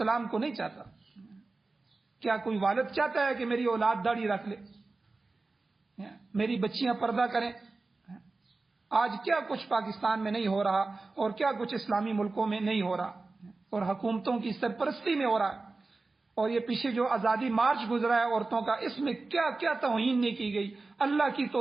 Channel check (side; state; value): left; quieter; 3.6 dB